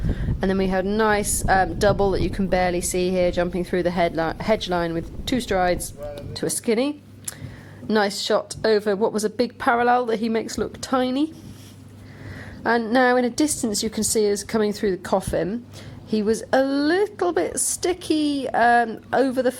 And then we had a nice double that you can barely see here, jumping through the hedge line with 2 strides to a skinny. Nice shot over what was a big parallel that he makes look tiny. And now in a distance you can see us coming through the coffin. He was a little bit sticky over the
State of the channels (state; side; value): identical; both; correlation 1.00